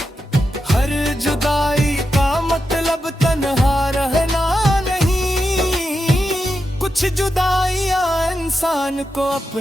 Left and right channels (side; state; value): both; normal; correlation 0.88